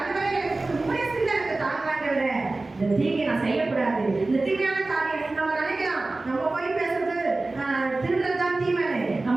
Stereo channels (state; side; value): quieter; left; 3.2 dB